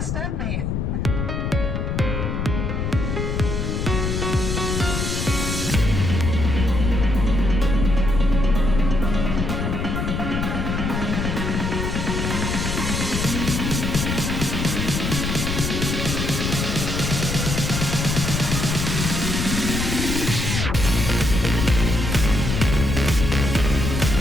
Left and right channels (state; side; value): noise; left; rumble, 1 dB below the sound